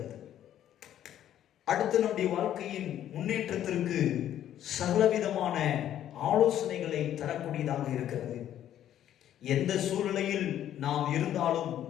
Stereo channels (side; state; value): right; quieter; 11.3 dB